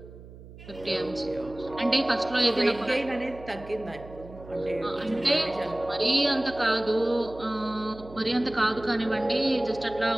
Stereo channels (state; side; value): noise; right; hum, 17 dB below the sound